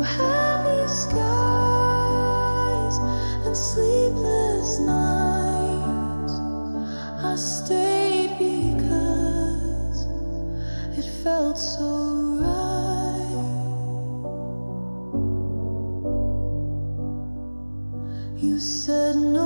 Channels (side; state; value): both; inverted; correlation -1.00